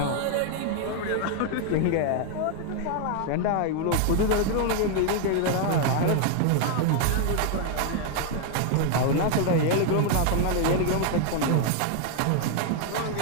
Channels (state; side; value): different; both; correlation 0.00